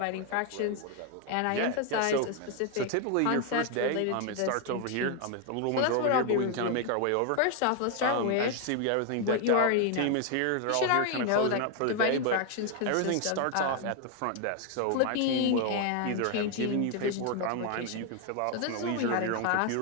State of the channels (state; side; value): different; both; correlation 0.01